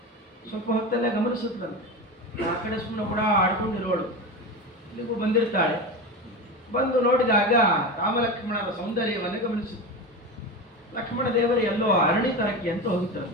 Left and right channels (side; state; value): both; normal; correlation 0.23